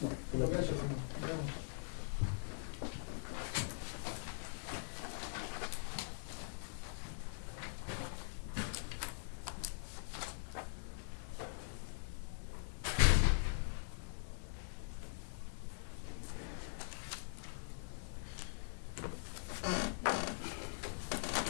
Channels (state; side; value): silent; right; digital silence